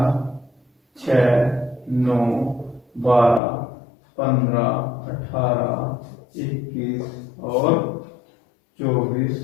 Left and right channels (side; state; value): right; drops out; at 3.4 s